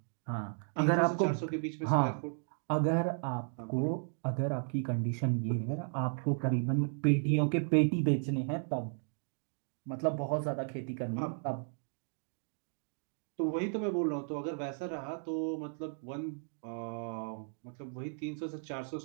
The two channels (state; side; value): silent; left; 55 dB below the other